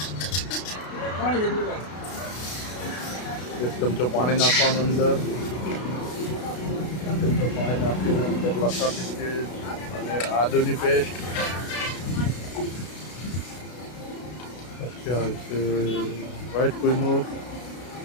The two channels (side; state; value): right; late; 32 ms